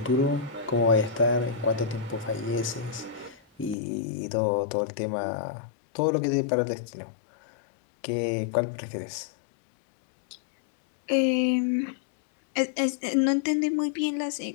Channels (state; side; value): drops out; right; at 3.8 s